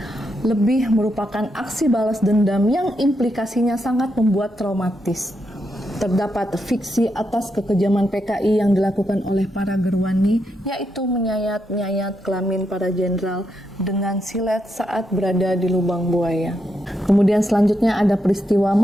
Lebih merupakan aksi balas dendam yang implikasinya sangat membuat traumatis. Terdapat fiksi atas kekejaman PKI yang dilakukan oleh para gerwani, yaitu menyayat-nyayat kelamin para jenderal dengan silet saat berada di lubang buaya. Kemudian selanjutnya ada peristiwa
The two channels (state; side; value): normal; both; correlation 0.82